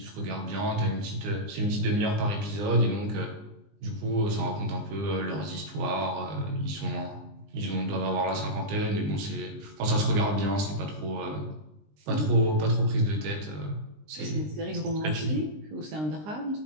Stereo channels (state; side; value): late; left; 20 ms